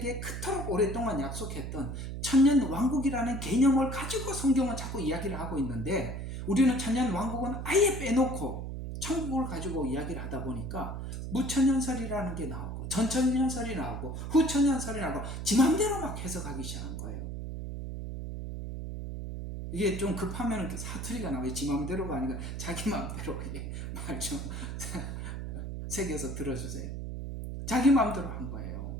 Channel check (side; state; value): right; noise; hum, 6 dB below the sound